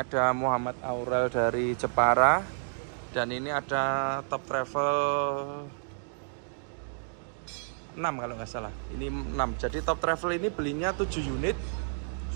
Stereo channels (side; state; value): left; silent; digital silence